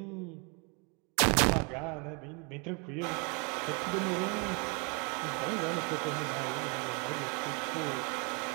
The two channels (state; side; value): quieter; left; 33.3 dB